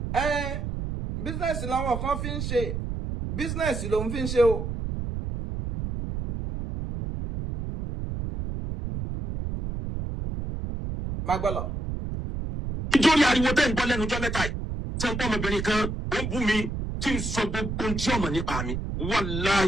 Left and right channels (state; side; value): noise; right; rumble, 4 dB below the sound